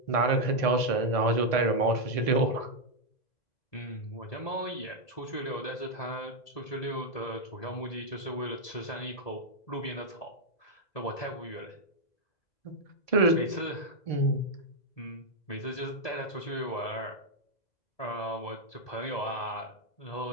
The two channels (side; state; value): right; late; 2.0 ms